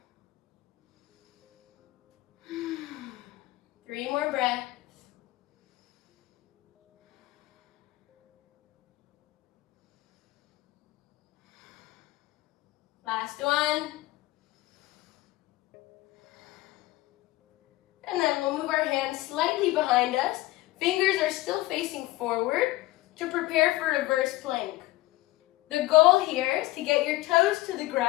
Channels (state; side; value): quieter; right; 18.3 dB